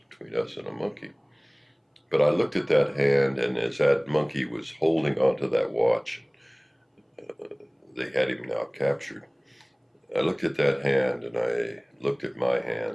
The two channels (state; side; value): identical; both; correlation 1.00